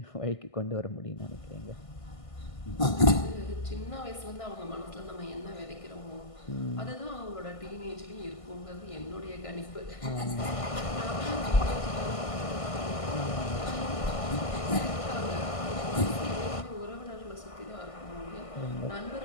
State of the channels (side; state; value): right; late; 1.5 ms